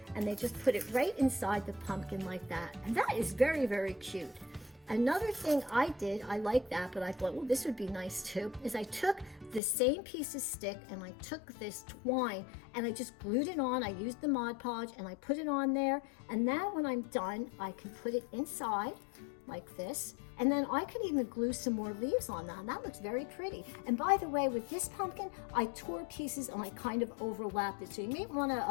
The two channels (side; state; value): right; drops out; at 9.6 s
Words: and they just put it right inside the pumpkin like that, and that is very, very cute. Another thing I did, I like that, but I thought, well, this would be nice too, is I took the same piece of stick and I took this twine and I just glued it on. I used the Mod Podge and I put it on there. And now when I'm done, I can put it inside like this. And then I can even glue some more leaves on that. And that looks very pretty. And by the way, with this pumpkin, I tore pieces and I kind of overlapped it. So you may want